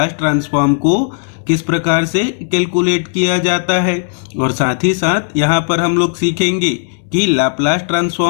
ट्रांसफॉर्म को किस प्रकार से कैलकुलेट किया जाता है। और साथ ही साथ यहाँ पर हम लोग सीखेंगे कि लाप्लास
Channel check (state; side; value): silent; right; digital silence